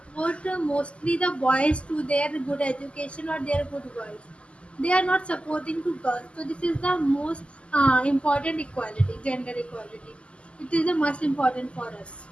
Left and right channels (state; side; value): late; right; 0.055 ms